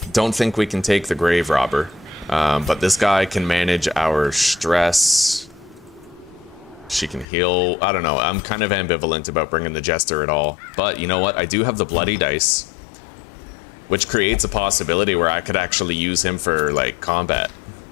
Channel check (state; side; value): drops out; right; at 7.2 s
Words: Don't think we can take the grave robber, but this guy can manage our stress. She can heal. I don't know. I'm kind of ambivalent about bringing the jester at all. But you know what? I do have the bloody dice, which creates a possibility where I could actually use him for, like, combat.